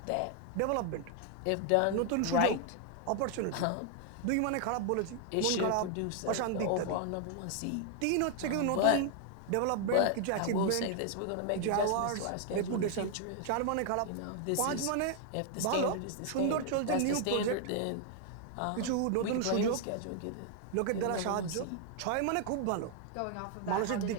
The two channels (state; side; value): different; both; correlation 0.00